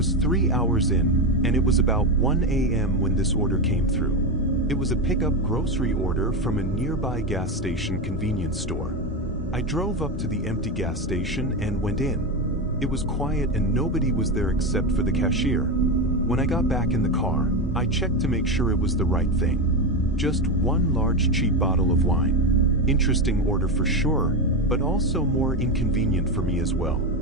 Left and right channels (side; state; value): both; normal; correlation 0.14